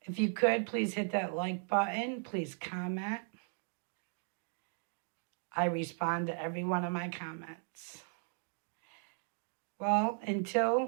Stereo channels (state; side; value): silent; left; 53 dB below the other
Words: If you could, please hit that like button. Please comment. I respond to every one of my comments. Well,